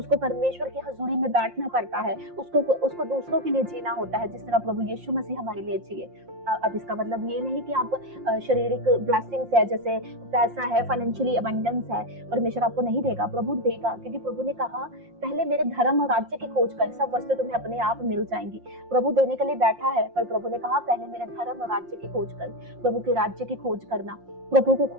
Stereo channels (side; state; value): left; late; 5.7 ms